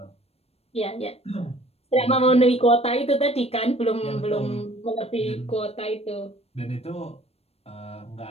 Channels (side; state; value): right; late; 0.29 ms